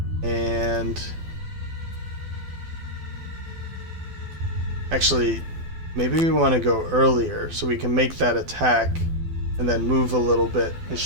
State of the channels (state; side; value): late; left; 12 ms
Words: And... Actually, maybe we want to go earlier so we can make that attack and then move a little bit, and